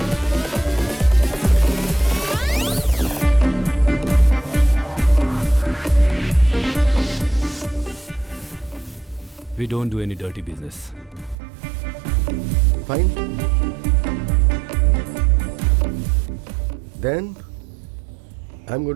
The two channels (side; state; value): left; drops out; at 11.4 s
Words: We don't do any dirty business. Fine. Then I'm going